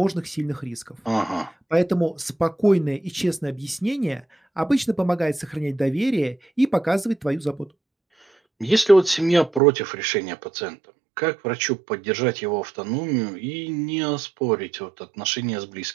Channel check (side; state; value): left; drops out; at 9.6 s